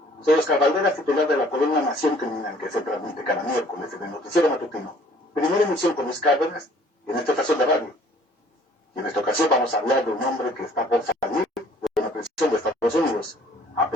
Soy Oscar Valderas, titular de la columna Nación Criminal, que se transmite cada miércoles en el noticiero matutino. Primera emisión con Luis Cárdenas, y en esta estación de radio. Y en esta ocasión vamos a hablar de un hombre que está por salir de una prisión de Estados Unidos, a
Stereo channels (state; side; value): normal; both; correlation 0.56